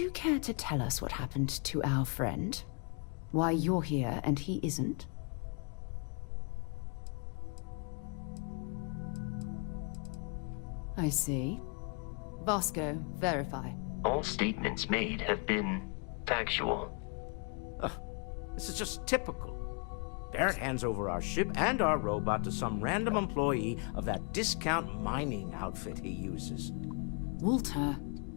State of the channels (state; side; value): quieter; right; 37.2 dB